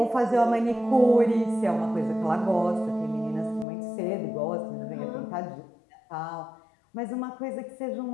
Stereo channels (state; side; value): drops out; right; at 3.7 s